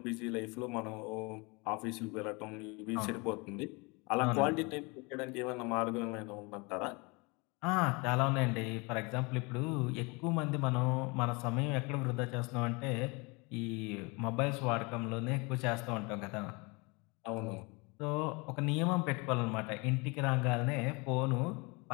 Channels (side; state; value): right; quieter; 28.3 dB